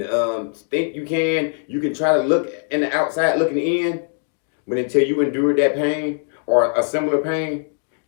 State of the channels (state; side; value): silent; right; 65 dB below the other